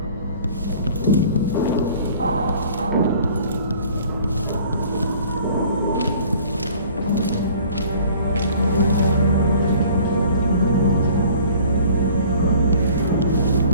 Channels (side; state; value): both; inverted; correlation -0.50